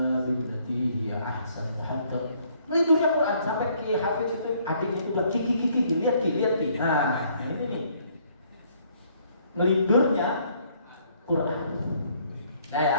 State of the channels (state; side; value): inverted; both; correlation -0.65